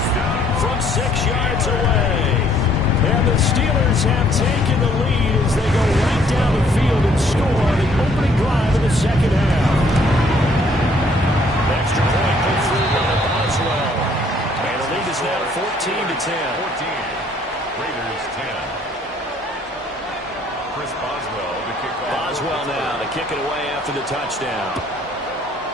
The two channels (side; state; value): both; normal; correlation 0.63